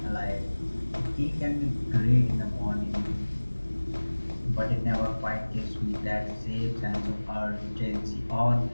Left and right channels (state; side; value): inverted; both; correlation -1.00